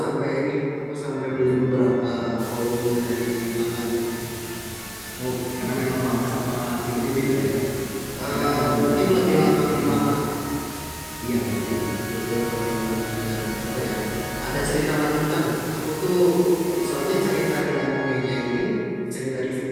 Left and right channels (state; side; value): identical; both; correlation 1.00